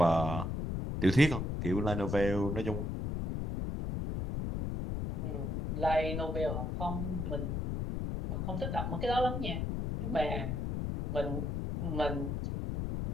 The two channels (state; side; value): noise; left; rumble, 2 dB below the sound